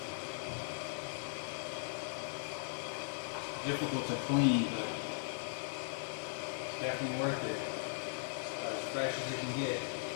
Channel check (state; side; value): silent; right; 52 dB below the other